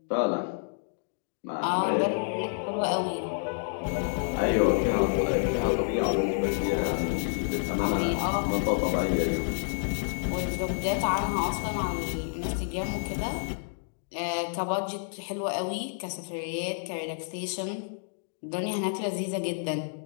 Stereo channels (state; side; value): silent; right; digital silence